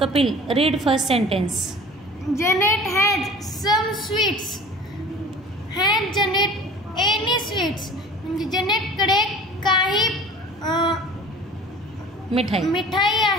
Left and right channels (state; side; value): noise; left; hum, 28 dB below the sound